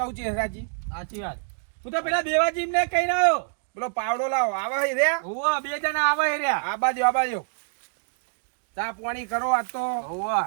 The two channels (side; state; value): left; silent; digital silence